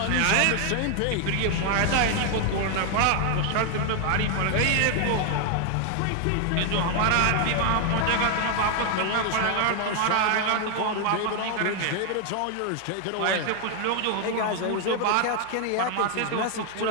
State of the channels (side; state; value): both; different; correlation 0.00